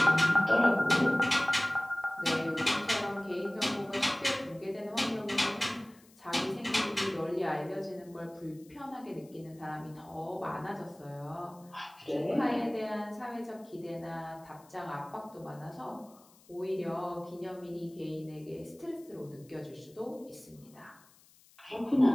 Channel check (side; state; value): left; noise; hiss, 27 dB below the sound